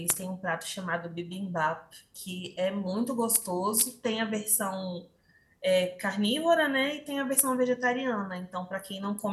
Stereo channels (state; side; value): identical; both; correlation 1.00